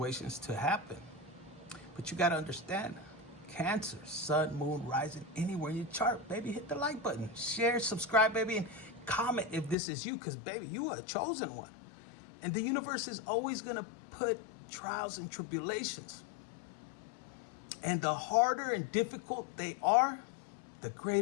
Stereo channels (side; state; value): right; drops out; at 9.8 s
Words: to happen? But you got to understand, Cancer, sun, moon, rising, anywhere in your chart, baby, hit the like button, share, subscribe, baby, and comment if this is you, because, baby, you are a chosen one. And the universe is always going to put trials and tribulations. And the harder and difficult they are, the